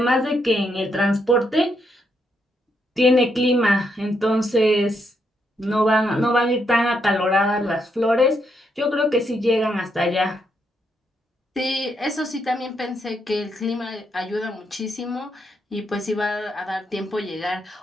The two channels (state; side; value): normal; both; correlation 0.78